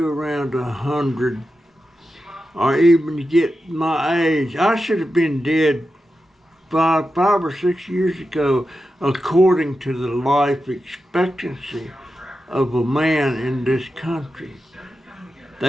around 100, or even you get my age. I should have been dead five or 6 years ago, according to the life expectancy of a man in this country.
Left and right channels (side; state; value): both; normal; correlation 0.90